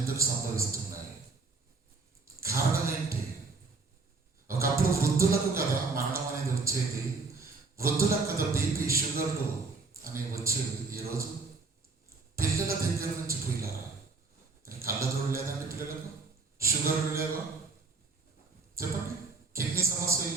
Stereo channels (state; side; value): quieter; left; 4.0 dB